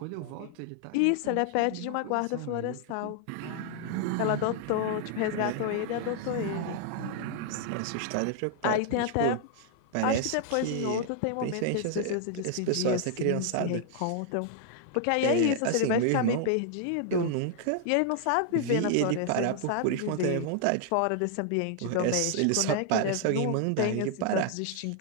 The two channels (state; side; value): different; both; correlation 0.00